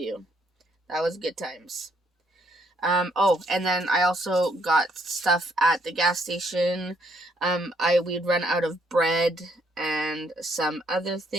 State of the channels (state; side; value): normal; both; correlation 0.70